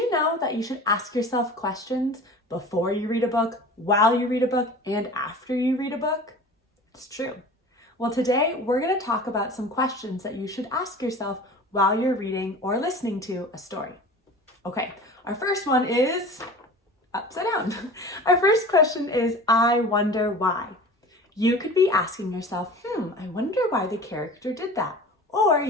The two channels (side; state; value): both; normal; correlation 0.39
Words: know that you should ask yourself questions before you read a book, while you read a book, and after you read a book? It's true. Well, today we're going to talk about some questions that you should ask yourself while you're reading or listening to a story. Okay, our first one is upside down. Our first question is, I wonder why. You could be asking yourself, I wonder why the character did that. Or